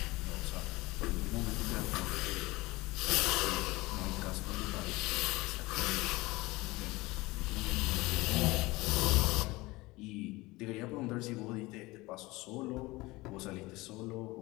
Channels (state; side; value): quieter; right; 21.4 dB